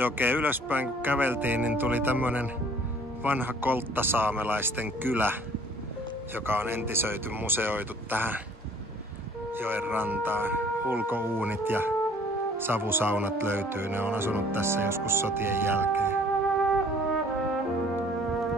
ylöspäin kun käveltiin, niin tuli tämmönen vanha kolttasaamelaisten kylä, joka on entisöity, museoitu tähän joen rantaan. Ulkouunit ja savusaunat löytyy, ne on asunut tässä joskus sotien jälkeen.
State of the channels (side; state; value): both; normal; correlation 0.55